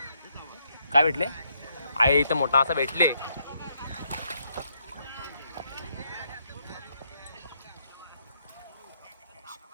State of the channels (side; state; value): both; inverted; correlation -0.76